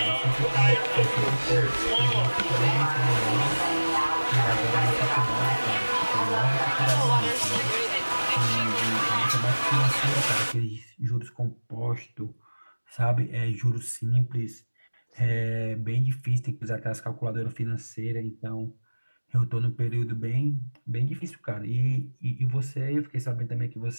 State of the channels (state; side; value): inverted; both; correlation -1.00